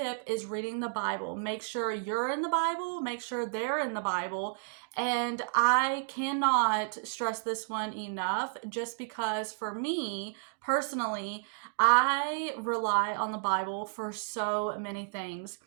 is reading the Bible. Make sure you're in the Bible, make sure they're in the Bible. And I cannot stress this one enough, just because for me personally, I rely on the Bible for so many things.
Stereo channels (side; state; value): left; silent; digital silence